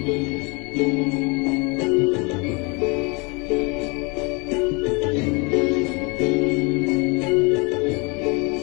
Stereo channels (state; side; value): quieter; right; 30.0 dB